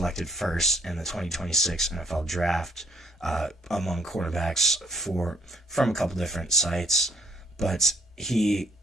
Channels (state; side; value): normal; both; correlation 0.64